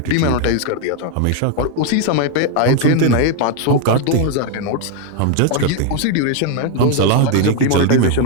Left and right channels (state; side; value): different; both; correlation 0.01